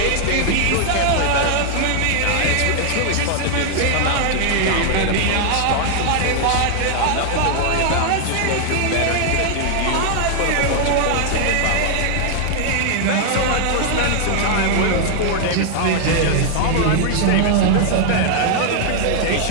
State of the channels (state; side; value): different; both; correlation 0.00